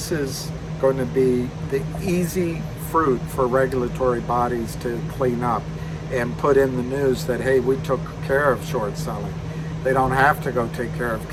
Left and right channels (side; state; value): both; identical; correlation 1.00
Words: is going to be the easy fruit for regulatory bodies to clean up and put in the news that, hey, we took care of short selling. They don't have to go take care of